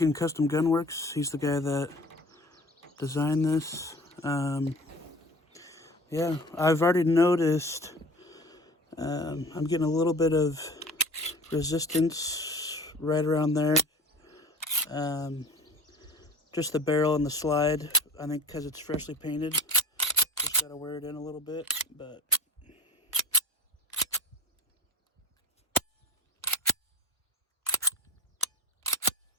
Custom Gunworks, he's the guy that designed this. Yeah, I've already noticed I'm getting a little bit of resistance right around there. Just the barrel and the slide, I think because it's freshly painted. Just gotta wear it in a little bit, but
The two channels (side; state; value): both; normal; correlation 0.40